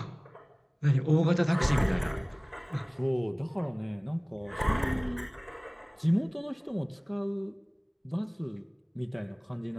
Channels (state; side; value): identical; both; correlation 1.00